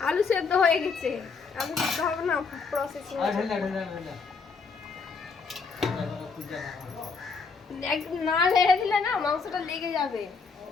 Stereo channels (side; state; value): right; quieter; 4.9 dB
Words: আলু সেদ্ধ হয়ে গেছে, আলু সেদ্ধ হবে না, প্রসেসিং না লেগে দিলে না মাংসটা লেগে যাবে।